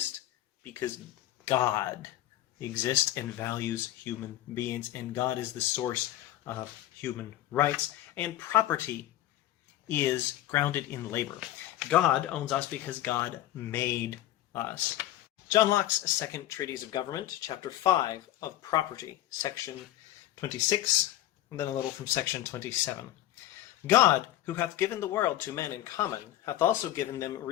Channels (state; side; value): quieter; right; 13.9 dB